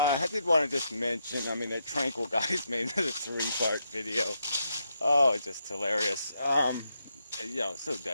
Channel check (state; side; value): inverted; both; correlation -0.81